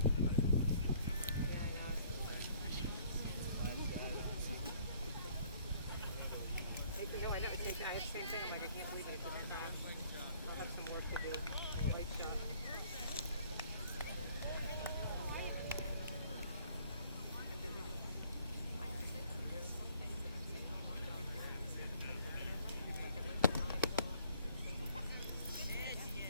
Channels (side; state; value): both; inverted; correlation -0.59